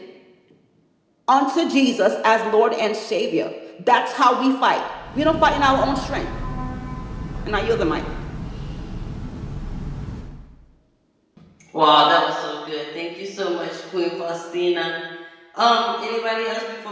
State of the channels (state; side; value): identical; both; correlation 1.00